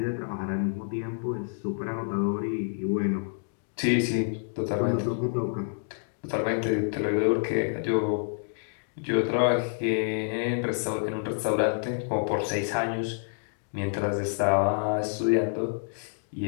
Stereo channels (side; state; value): right; silent; digital silence